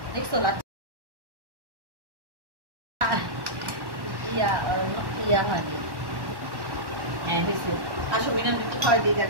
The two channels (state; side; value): late; left; 1.1 ms